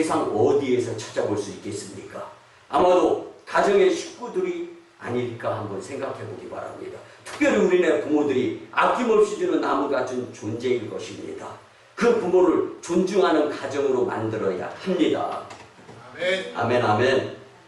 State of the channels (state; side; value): identical; both; correlation 1.00